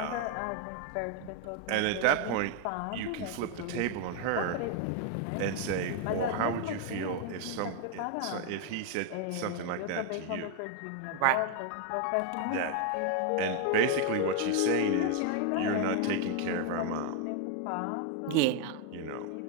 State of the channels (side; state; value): both; different; correlation 0.01